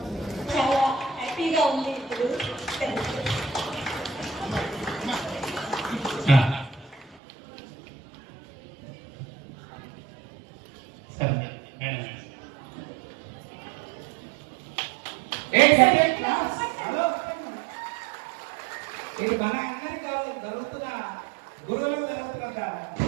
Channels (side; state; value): left; drops out; at 7.2 s